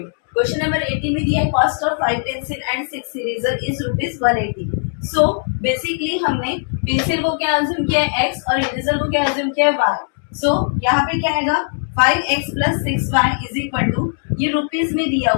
क्वेश्चन नंबर 18 में दिया है cost of 5 pencil and 6 eraser is ₹180. So basically हमने पेंसिल को क्या अज्यूम किया है x और इरेजर को क्या अज्यूम किया है y. सो यहाँ पे क्या आएगा 5x plus 6y is equal to, ये रुपीज में दिया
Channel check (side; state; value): right; silent; digital silence